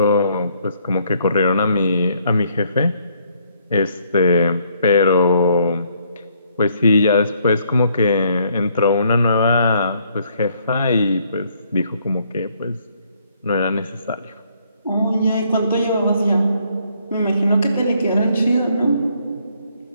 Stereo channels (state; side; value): inverted; both; correlation -0.68